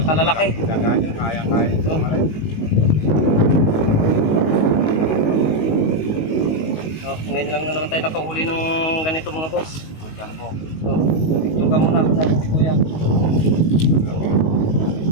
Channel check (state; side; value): late; right; 19 ms